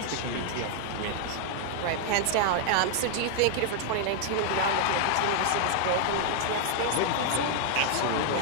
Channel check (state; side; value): different; both; correlation 0.00